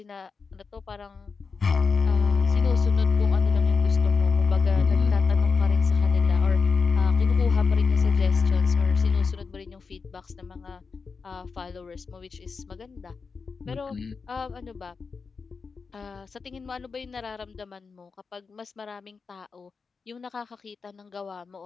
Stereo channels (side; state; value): right; quieter; 5.0 dB